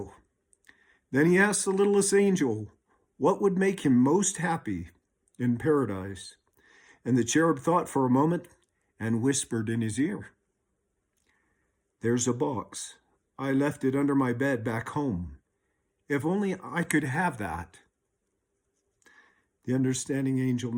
Then he asked the littlest angel what would make him most happy in paradise. And the cherub thought for a moment and whispered in his ear, "There's a box. I left it under my bed back home. If only I could have that." The understanding angel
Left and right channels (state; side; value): identical; both; correlation 1.00